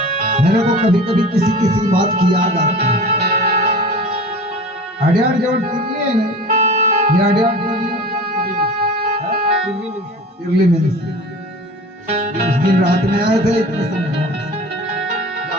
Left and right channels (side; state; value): both; normal; correlation 0.37